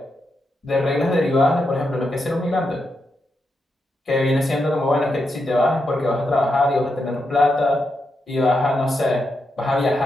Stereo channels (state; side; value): normal; both; correlation 0.84